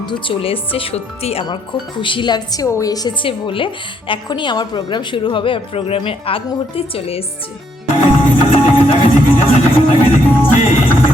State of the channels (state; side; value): normal; both; correlation 0.71